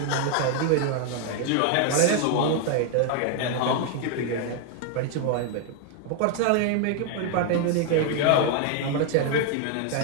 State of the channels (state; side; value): different; both; correlation 0.00